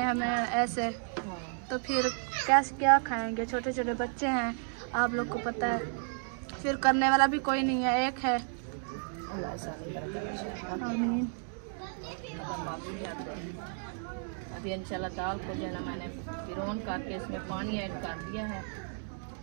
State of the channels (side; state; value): left; silent; 56 dB below the other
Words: ऐसे, तो फिर कैसे क्या खाएंगे, छोटे छोटे बच्चे हैं, आप लोग को पता है, फिर करने वाला भी कोई नहीं है, एक है। आमीन। अभी इंशाल्लाह दाल को जो है ना मैंने फिरौन करके इसमें पानी ऐड कर दिया है,